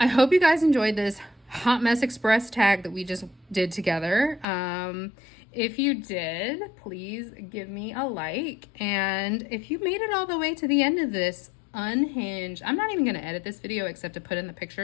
hope you guys enjoyed this Hot Mess Express tag that we just did together. If you did, please give me a like. And if you made it all the way to the end of this unhinged, I'm not even going to edit this video except to put in the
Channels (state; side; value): drops out; right; at 4.5 s